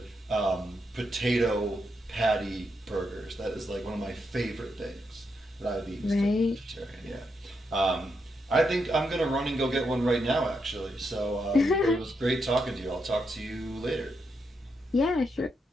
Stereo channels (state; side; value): normal; both; correlation 0.82